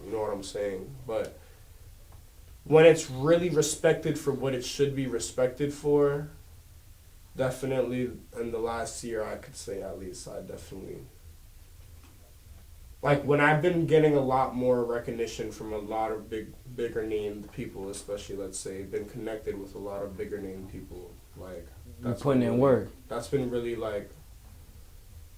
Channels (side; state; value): both; identical; correlation 1.00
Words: You know what I'm saying? But when it's really respected for what it should be respected for, definitely in the last year, I could say at least, I definitely, like, when I've been getting a lot more recognition from a lot of bigger named people, especially, let's say, been connected with a lot of bigger named people, like, that's putting in work. That's been really, like,